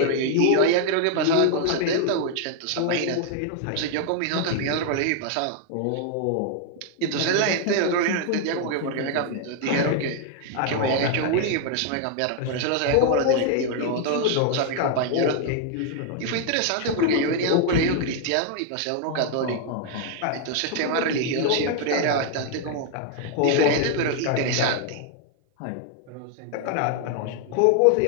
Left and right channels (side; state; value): both; different; correlation 0.00